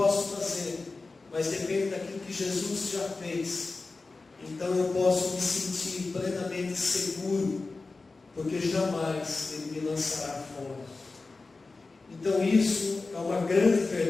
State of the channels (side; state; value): right; quieter; 3.7 dB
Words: fazer, mas depende daquilo que Jesus já fez. Então eu posso me sentir plenamente seguro, porque jamais Ele me lançará fora. Então isso é uma grande